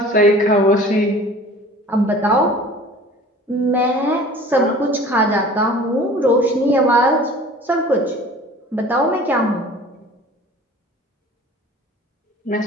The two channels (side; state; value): both; normal; correlation 0.45